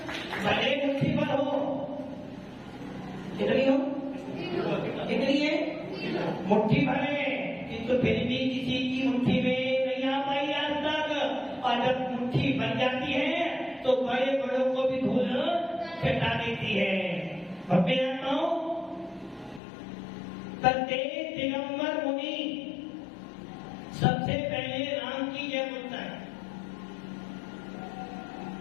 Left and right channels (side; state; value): right; drops out; at 19.6 s